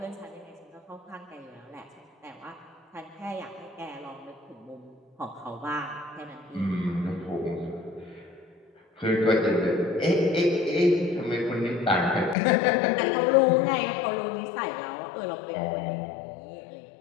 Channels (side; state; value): right; drops out; at 12.4 s